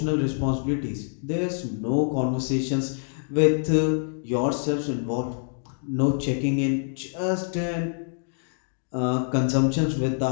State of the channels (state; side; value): silent; right; digital silence